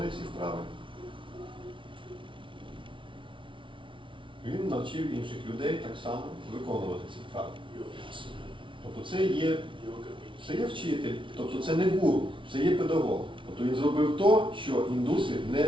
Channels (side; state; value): left; late; 0.25 ms